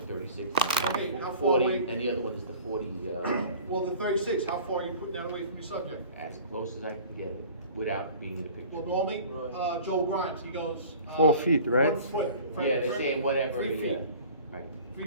36. Okay, how far 40, away? and the other one is the 40, Well, the 36, how far are you putting that away from your subject? as close as I can get it, without being in the picture. Well, normally, Right. Joe Grimes, he goes. 4 feet, right? 1 foot. Yeah, they say whatever, 3 yeah, feet, right,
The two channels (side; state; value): both; inverted; correlation -0.45